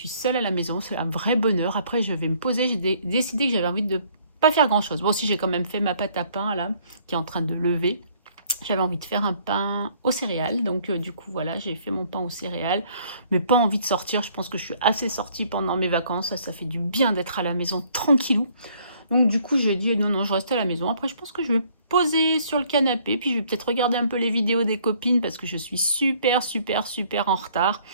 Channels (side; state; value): both; inverted; correlation -0.61